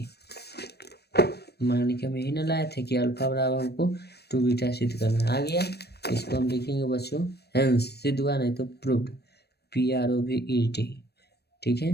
मान के हम यही ना लाए थे कि अल्फा बराबर हमको 2 बीटा सिद्ध करना, आ गया। इसको हम लिखेंगे बच्चों हेंस, सिद्ध हुआ नहीं तो प्रूव्ड, PROVED, ठीक है।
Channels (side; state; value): right; late; 0.47 ms